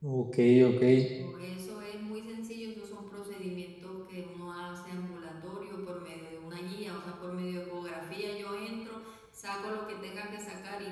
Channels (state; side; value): identical; both; correlation 1.00